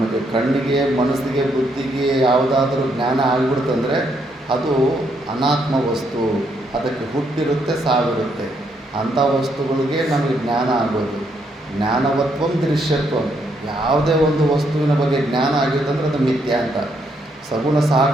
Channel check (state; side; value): normal; both; correlation 0.75